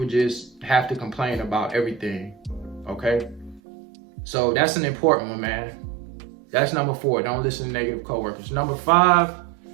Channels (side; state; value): left; drops out; at 3.6 s